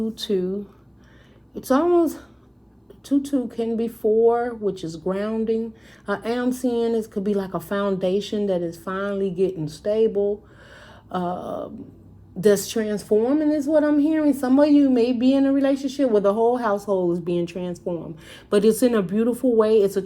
It's almost, 2-2 can be 4, which is grounding. I am seeing this could be like a foundation that is finally getting stable. That's transforming is what I'm hearing. Some of you may be in a relationship where the whole household is being transformed, but it's in a beautiful way. It's a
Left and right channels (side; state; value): both; identical; correlation 1.00